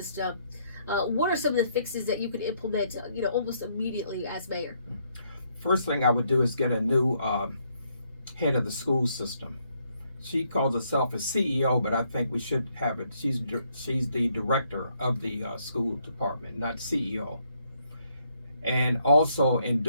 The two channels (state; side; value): inverted; both; correlation -0.72